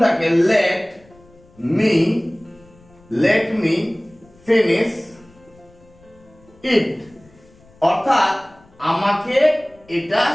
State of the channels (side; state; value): left; noise; rumble, 28 dB below the sound